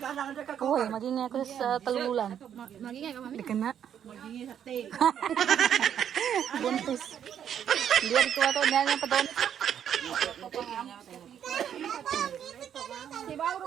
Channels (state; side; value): quieter; left; 9.1 dB